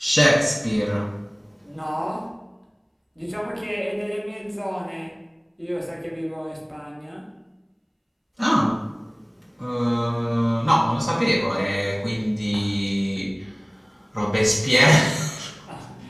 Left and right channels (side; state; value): both; identical; correlation 1.00